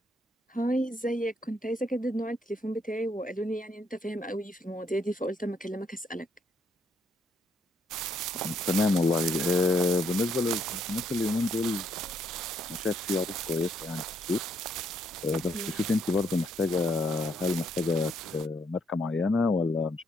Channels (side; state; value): both; normal; correlation 0.72